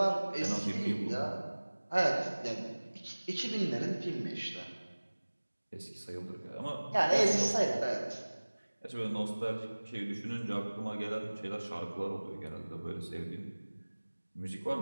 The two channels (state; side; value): inverted; both; correlation -1.00